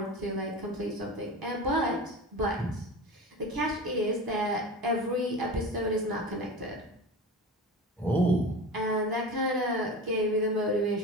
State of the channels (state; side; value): normal; both; correlation 0.31